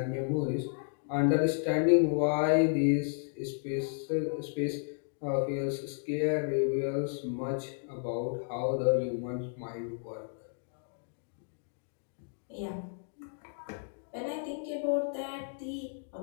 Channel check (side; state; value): right; silent; digital silence